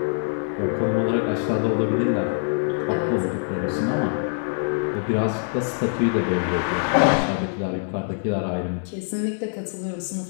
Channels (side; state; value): right; silent; digital silence